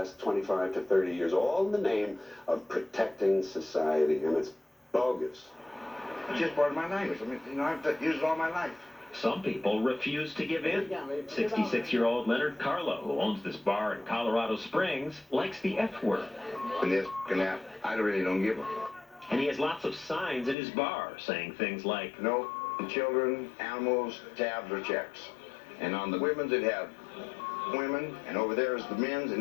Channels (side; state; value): right; drops out; at 20.6 s